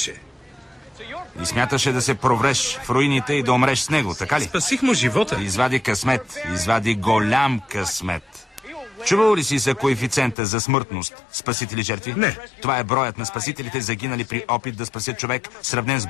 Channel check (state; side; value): drops out; right; at 10.4 s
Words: И смяташе да се провреш в руините и да умреш с него, така ли? Спасих му живота. Извади късмет. Извади голям късмет. Чувал ли си за коефициента за смъртност спасители жертви? Не. Това е броят на спасителите загинали при опит да спасят човек, сравнен с